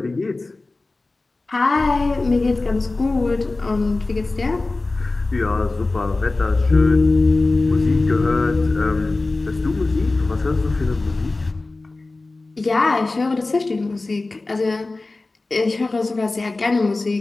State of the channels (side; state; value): right; quieter; 3.3 dB